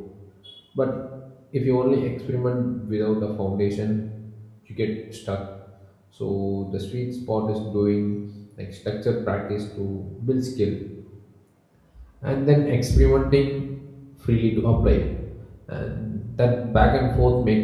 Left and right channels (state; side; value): identical; both; correlation 1.00